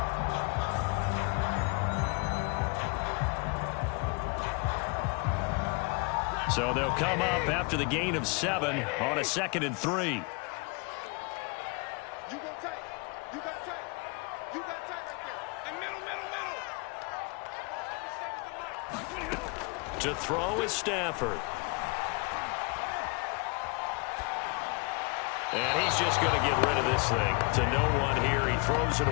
So they'll come up after the gain of 7 on a 2nd and 3. To throw is Stafford. And he's just going to get rid of this thing. To no one here. He throws it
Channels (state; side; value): quieter; right; 30.5 dB